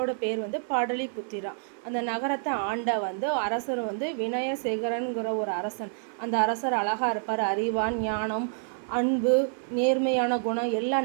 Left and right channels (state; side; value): silent; left; 59 dB below the other